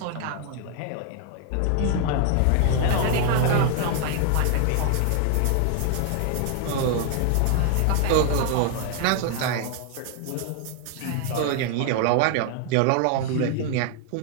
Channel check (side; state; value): both; different; correlation 0.00